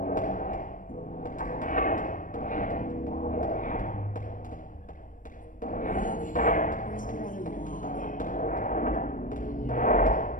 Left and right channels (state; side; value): late; right; 0.38 ms